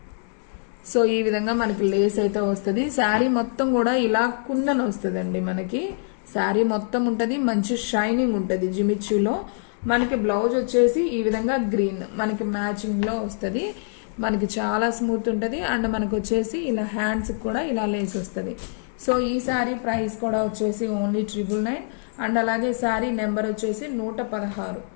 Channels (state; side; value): silent; right; digital silence